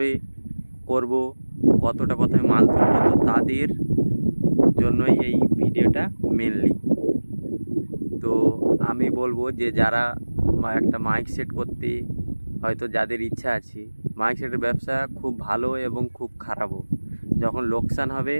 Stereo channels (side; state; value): both; inverted; correlation -1.00